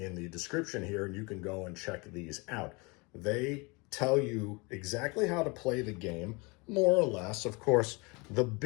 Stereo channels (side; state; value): right; quieter; 27.7 dB